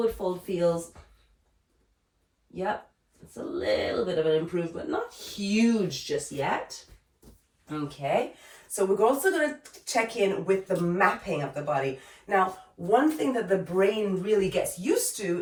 fold feels. Yep. It's a little bit of an improvement. Not huge just yet. Okay. So we're also going to check in with the mapping of the body. Now, one thing that the brain really gets used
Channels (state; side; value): identical; both; correlation 1.00